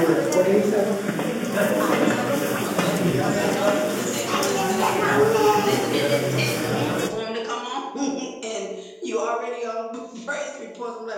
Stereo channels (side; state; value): both; identical; correlation 1.00